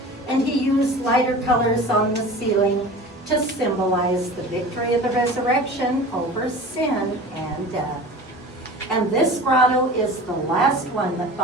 And he used lighter colors on the ceiling to symbolize the victory of the resurrection over sin and death. And this grotto is the last one that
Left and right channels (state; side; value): normal; both; correlation 0.38